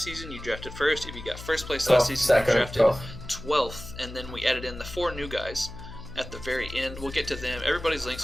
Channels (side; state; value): left; noise; hum, 12 dB below the sound